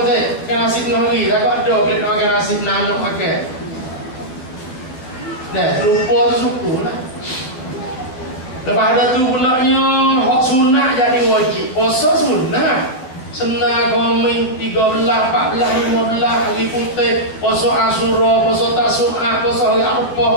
teh kan nasib ngari tak ada klik nak makan nasib nanok pakai. Nah, rupa tu suku lah. Lepas ada tu pulaknya hak sunat jadi wajib. Puasa sunat. Senang komen 13, 14, 15 hari putih, puasa Asyura, puasa Tasu'a, puasa hari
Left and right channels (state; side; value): late; right; 12 ms